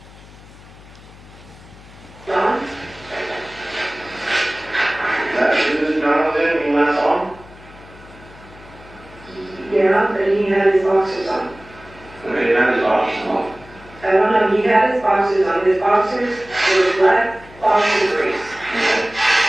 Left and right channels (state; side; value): noise; left; hum, 21 dB below the sound